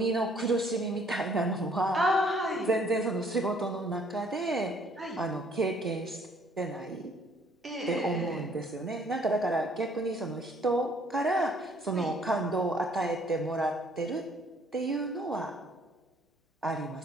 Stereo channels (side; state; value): both; normal; correlation 0.61